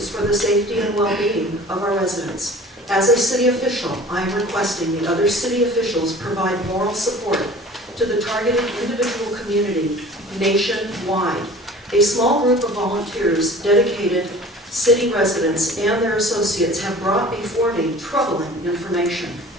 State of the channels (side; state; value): both; normal; correlation 0.44